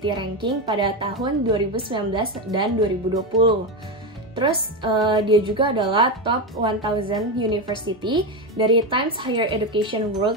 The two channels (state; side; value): normal; both; correlation 0.14